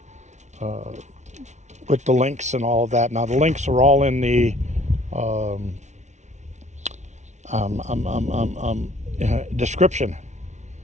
with the links and all of that. Now the links are all in the description.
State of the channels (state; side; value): late; left; 0.33 ms